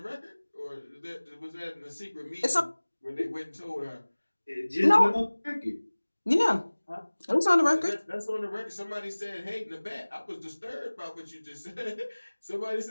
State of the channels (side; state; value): both; inverted; correlation -1.00